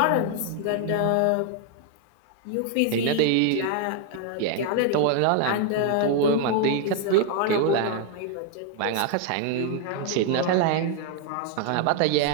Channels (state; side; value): different; both; correlation 0.00